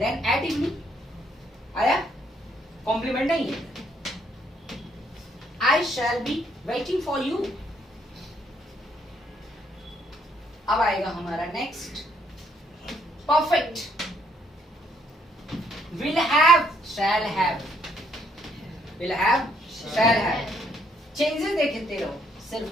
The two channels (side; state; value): both; normal; correlation 0.69